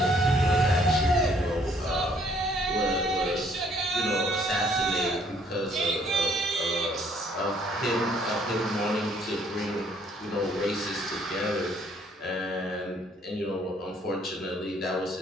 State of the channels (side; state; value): both; normal; correlation 0.64